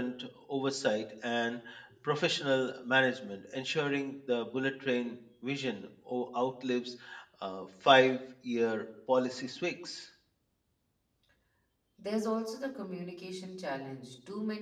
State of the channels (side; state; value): both; identical; correlation 1.00